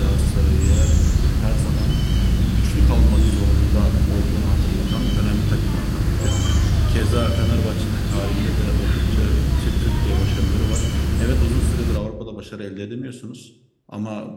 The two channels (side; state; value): both; identical; correlation 1.00